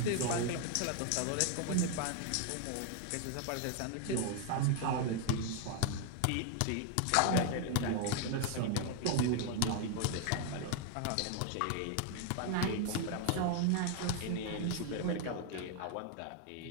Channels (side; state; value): both; different; correlation 0.00